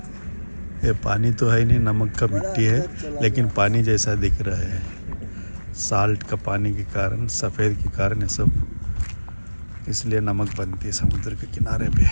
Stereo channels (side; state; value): both; inverted; correlation -1.00